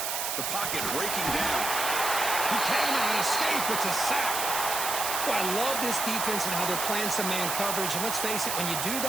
The pocket breaking down. He cannot escape. It's a sack. Well, I love this defense and how they're playing some man coverage. And let's face it, when you do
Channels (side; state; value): right; noise; hiss, 1 dB below the sound